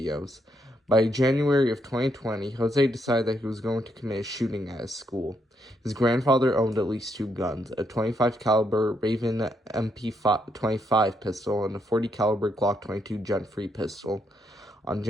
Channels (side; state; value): both; normal; correlation 0.76